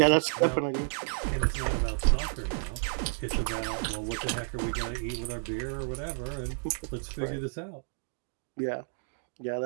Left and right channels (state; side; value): silent; left; digital silence